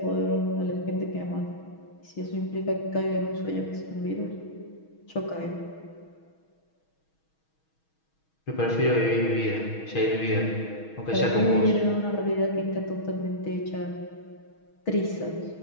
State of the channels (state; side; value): late; right; 6.3 ms